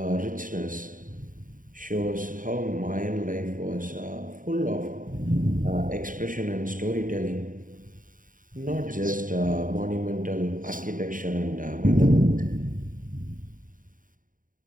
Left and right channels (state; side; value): late; left; 0.39 ms